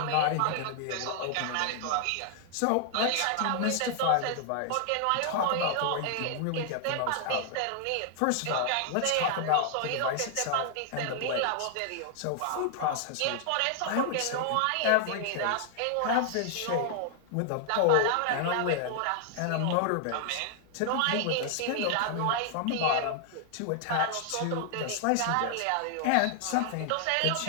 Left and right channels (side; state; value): both; different; correlation 0.00